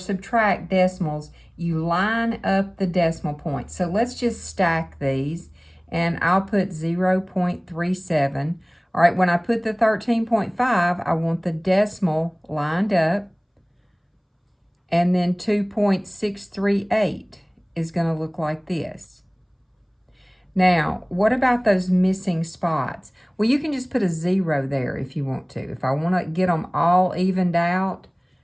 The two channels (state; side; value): identical; both; correlation 1.00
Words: decimals, you line up the decimal points. So let's just stack these, and I'll put 0.37. All right, when I put the 13.5, I want the decimal lined up, and then 2.638 is going to look like this. Now, what about those missing spots? Well, you can just put a 0 there if you want to. If I want to get them all evened out,